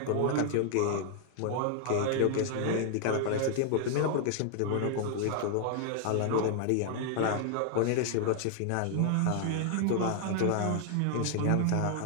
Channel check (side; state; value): both; different; correlation 0.00